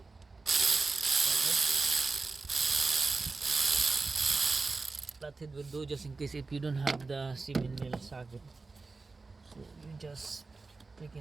Flathead will do, just in case if you don't have the 7 mil socket. So you just take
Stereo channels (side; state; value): left; quieter; 3.9 dB